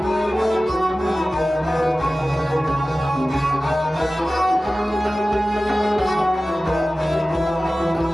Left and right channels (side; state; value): both; normal; correlation 0.96